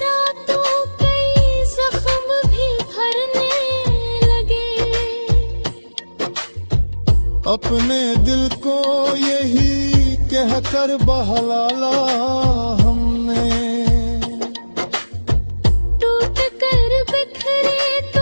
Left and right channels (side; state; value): both; inverted; correlation -1.00